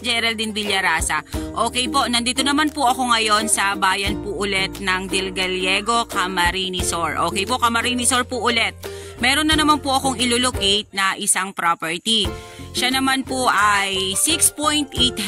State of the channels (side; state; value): both; identical; correlation 1.00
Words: Geraldine Villarasa. Okay po, nandito naman po ako ngayon sa bayan po ulit ng Del Gallego, Camarines Sur. Okay po, Camarines Sur po ulit. Meron na naman po akong ilolocate na isang property. Siya naman po ay 6.8